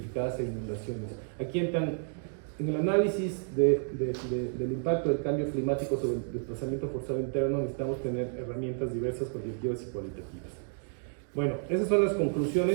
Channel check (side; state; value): left; silent; 57 dB below the other